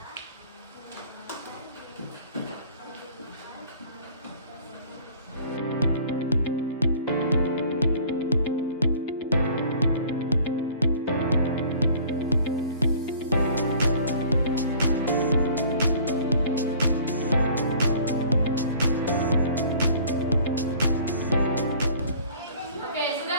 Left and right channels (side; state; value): both; inverted; correlation -0.50